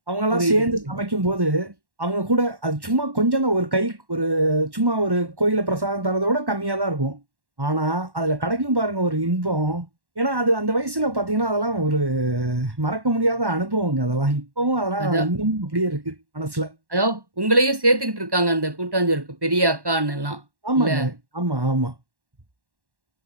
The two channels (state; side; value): late; left; 1.1 ms